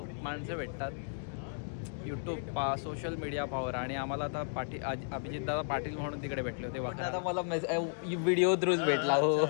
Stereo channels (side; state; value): right; silent; digital silence